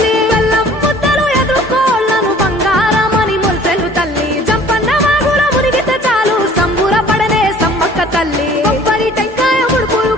బెల్లం ముద్దలు ఎదుర్కోళ్లను బంగారమని మురిసెలు తల్లి జంపన్న వాగుల మునిగితే చాలు సంబూర పడనే సమ్మక్క తల్లి కొబ్బరి టెంకాయ ముడుపులు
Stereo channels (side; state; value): both; normal; correlation 0.51